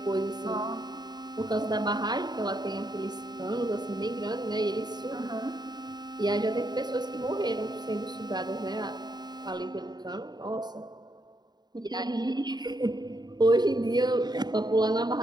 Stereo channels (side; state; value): left; late; 0.20 ms